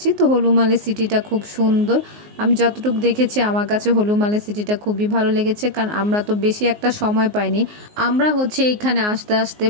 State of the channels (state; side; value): late; left; 19 ms